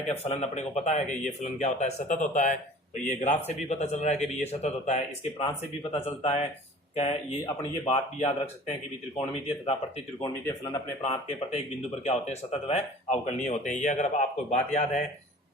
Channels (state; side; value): normal; both; correlation 0.45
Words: कि फलन अपने को पता है कि ये फलन क्या होता है, सतत होता है। तो ये ग्राफ से भी पता चल रहा है कि ये सतत होता है, इसके प्रांत से भी पता चलता है। क्या ये अपने ये बात भी याद रख सकते हैं कि त्रिकोणमितीय तथा प्रति त्रिकोणमितीय फलन अपने प्रांत के प्रत्येक बिंदु पर क्या होते हैं, सतत व अवकलनीय होते हैं। ये अगर आपको बात याद है